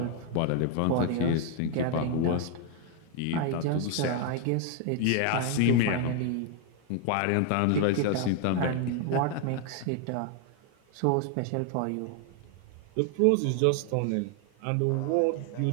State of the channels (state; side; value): different; both; correlation 0.00